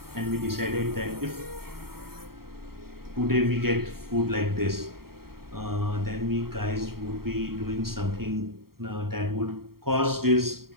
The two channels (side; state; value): left; late; 0.93 ms